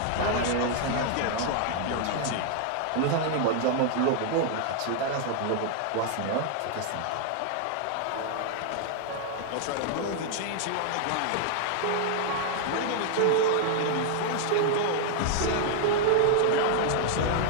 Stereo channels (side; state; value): both; different; correlation -0.01